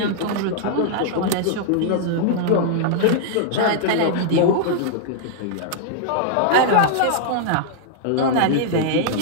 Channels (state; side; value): different; both; correlation -0.01